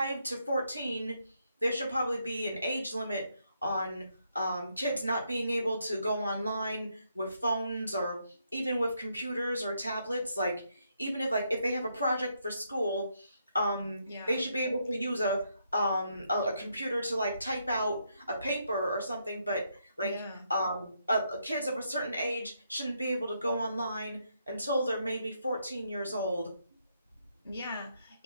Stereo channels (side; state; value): both; inverted; correlation -0.77